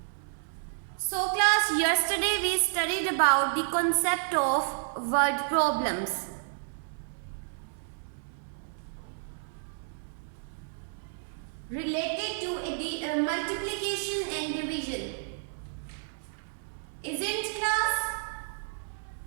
So class, yesterday we studied about the concept of word problems. Related to the multiplication and division. Isn't class?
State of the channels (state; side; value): silent; left; 57 dB below the other